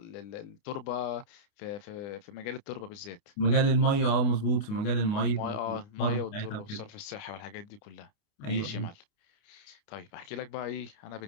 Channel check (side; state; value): right; late; 28 ms